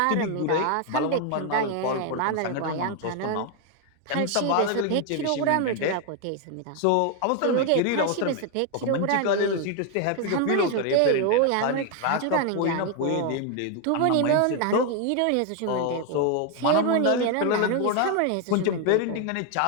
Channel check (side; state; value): both; different; correlation 0.01